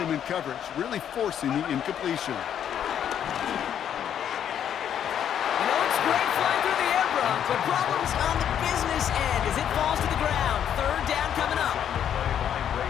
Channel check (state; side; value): quieter; right; 9.4 dB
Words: him in coverage, really forcing the incompletion. You know, it's great flying through the air, Brock, but problems on the business end as it falls to the ground. Third down coming up.